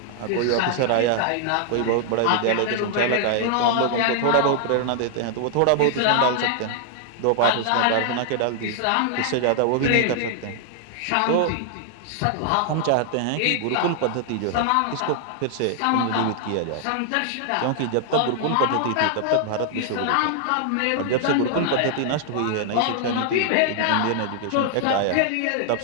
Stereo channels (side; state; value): both; different; correlation -0.01